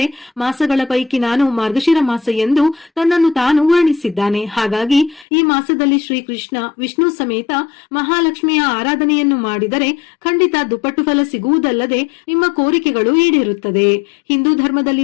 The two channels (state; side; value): drops out; right; at 5.2 s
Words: ಮಾಸಗಳ ಪೈಕಿ ನಾನು ಮಾರ್ಗಶಿರ ಮಾಸ ಎಂದು ತನ್ನನ್ನು ತಾನು ವರ್ಣಿಸಿದ್ದಾನೆ. ಹಾಗಾಗಿ ಈ ಮಾಸದಲ್ಲಿ ಶ್ರೀಕೃಷ್ಣ ವಿಷ್ಣು ಸಮೇತ ಮಹಾಲಕ್ಷ್ಮಿಯ ಆರಾಧನೆಯನ್ನು ಮಾಡಿದರೆ ಖಂಡಿತ ದುಪ್ಪಟ್ಟು ಫಲ ಸಿಗುವುದಲ್ಲದೆ ನಿಮ್ಮ ಕೋರಿಕೆಗಳು ಈಡೇರುತ್ತದೆ. ಹಿಂದೂ